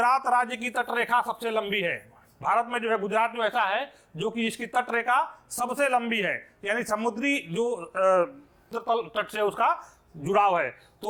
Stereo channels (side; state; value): both; identical; correlation 1.00